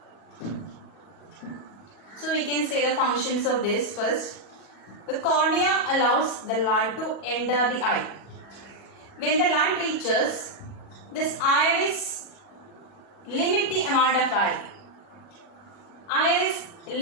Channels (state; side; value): late; right; 40 ms